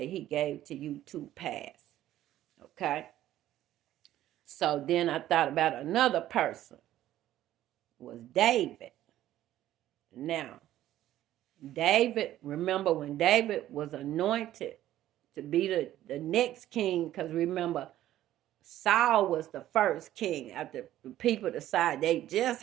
he gave to you to pass. Okay? So then I thought about another person. It was David. Now, David, remember when David was anointed to be the next king, because remember, Saul was the first king. After the people decided they just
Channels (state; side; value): quieter; left; 13.3 dB